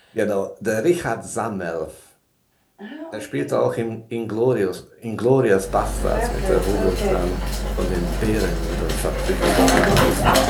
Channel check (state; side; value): identical; both; correlation 1.00